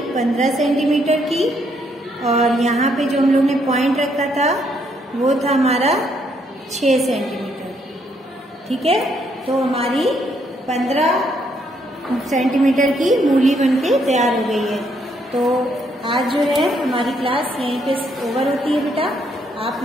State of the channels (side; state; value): both; normal; correlation 0.72